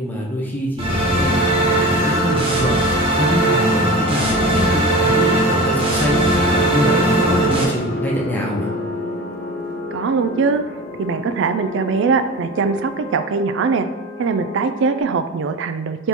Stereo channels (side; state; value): both; normal; correlation 0.31